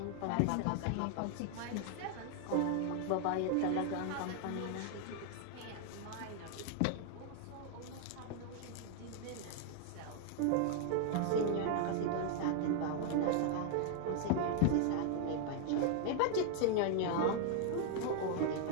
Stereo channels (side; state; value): both; different; correlation 0.00